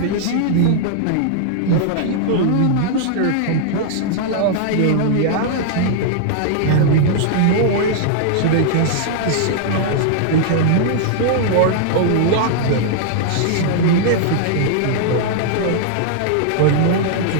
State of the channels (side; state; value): both; different; correlation -0.01